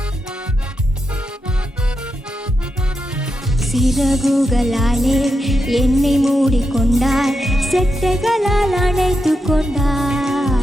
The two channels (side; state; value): both; normal; correlation 0.86